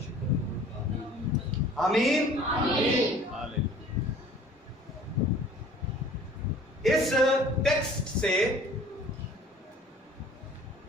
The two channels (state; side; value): normal; both; correlation 0.50